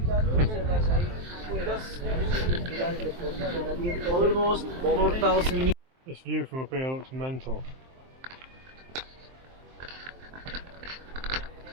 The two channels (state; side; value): late; left; 23 ms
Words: Almost 4,000. This view from up here looks mental.